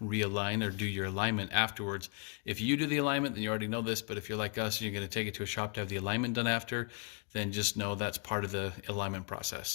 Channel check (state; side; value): quieter; right; 36.6 dB